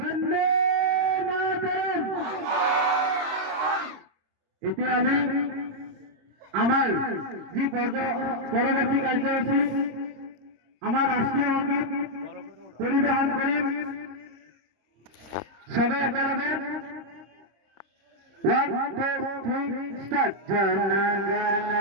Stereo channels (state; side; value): late; left; 26 ms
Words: এতিয়া আমি আমার যে পরবর্তী কার্যসূচী আমার রাষ্ট্রীয় সঙ্গীত পরিবেশন করিম সবাই একেলগে 1 2 3 স্টার্ট। জনগণ